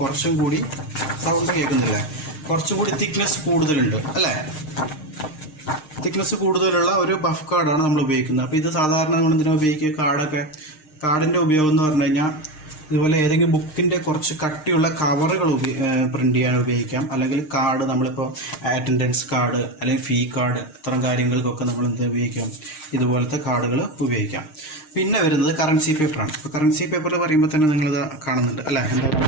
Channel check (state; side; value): late; right; 6.5 ms